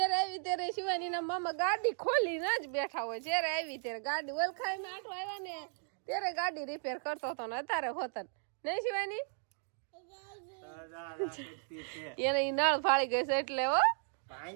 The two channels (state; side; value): silent; left; 54 dB below the other